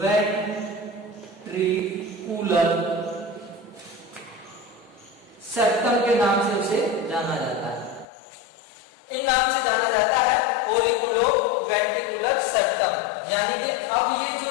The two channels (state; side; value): drops out; right; at 8.1 s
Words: वेंट्रिकुलर सेप्टम के नाम से उसे जाना जाता है। इन नाम से जाना जाता है ओरिकुलो वेंट्रिकुलर सेप्टम। यानी कि अब ये जो